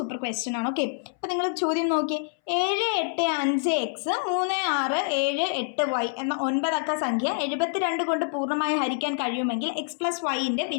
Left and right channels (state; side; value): silent; right; 61 dB below the other